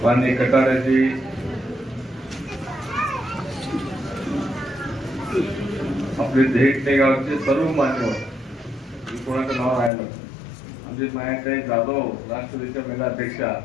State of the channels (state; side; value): drops out; right; at 9.9 s